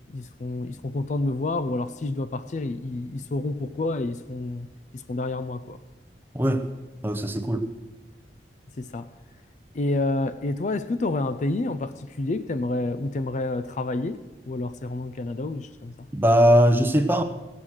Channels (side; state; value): both; normal; correlation 0.73